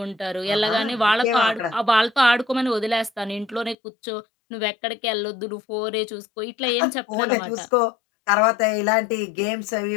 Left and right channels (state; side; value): drops out; right; at 3.8 s